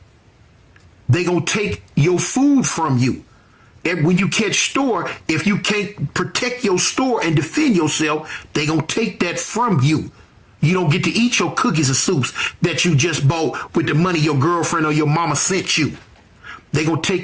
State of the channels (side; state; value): both; identical; correlation 1.00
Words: They gonna take your food from you. And when you catch store, if you can't protect your store and defend yourself, they gonna take that from you. You don't get to eat your cookies and soups that you just bought with the money your girlfriend or your mama sent you. They gonna